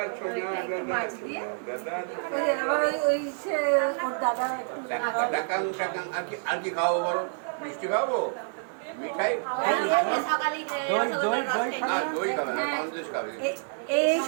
ছোনা একটু দাদা মাছ দিয়ে? দাদা ওই যে আবার ওই সে ওর দাদা একটু খাওয়াবে। টাকাং টাকাং আর কি খাওয়াবো বলো? মিষ্টি খাওয়াবো, মিঠাই, সকালে দই খাবে না, সন্দেশ খাবে। এই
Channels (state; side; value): silent; left; 59 dB below the other